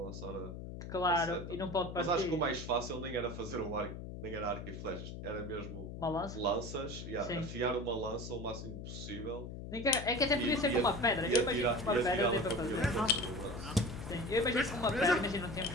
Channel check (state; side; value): noise; left; hum, 9 dB below the sound